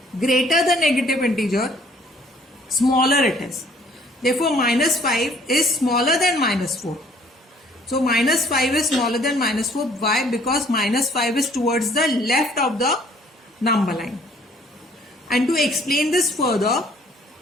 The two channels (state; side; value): normal; both; correlation 0.59